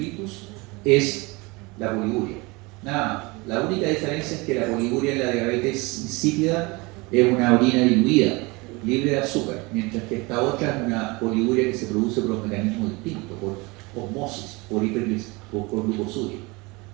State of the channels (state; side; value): quieter; left; 25.3 dB